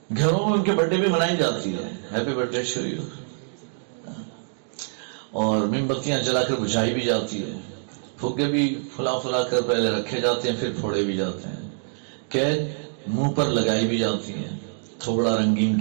گھروں میں ان کے برتھ ڈے بھی منائی جاتی ہے، happy birthday to you, اور موم بتیاں جلا کر بجھائی بھی جاتی ہے، پھگے بھی پھلا پھلا کر پہلے رکھے جاتے ہیں پھر پھوڑے بھی جاتے ہیں، کیک منہ پر لگائی بھی جاتی ہے، تھوڑا رنگین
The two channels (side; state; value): left; silent; digital silence